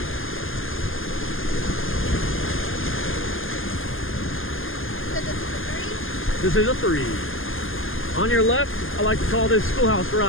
This is a 3. On your left, I like to call this Schoolhouse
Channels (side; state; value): right; late; 0.59 ms